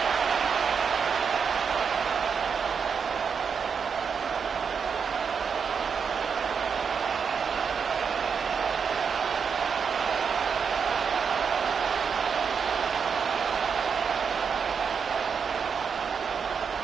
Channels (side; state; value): left; quieter; 6.3 dB